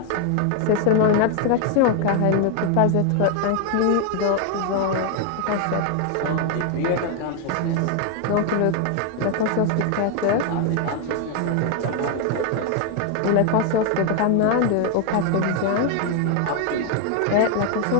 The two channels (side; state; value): both; different; correlation 0.00